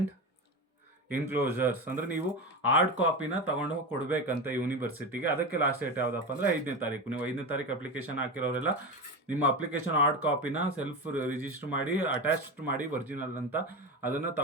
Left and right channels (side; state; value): both; normal; correlation 0.21